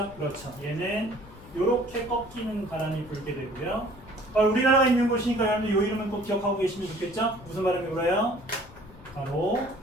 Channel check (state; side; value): noise; left; rumble, 20 dB below the sound